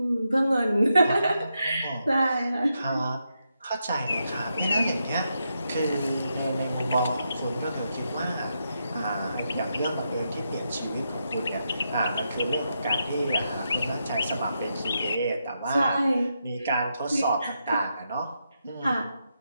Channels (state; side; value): inverted; both; correlation -0.83